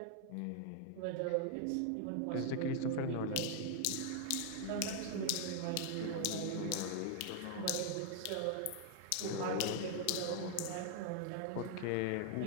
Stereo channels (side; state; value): both; different; correlation 0.00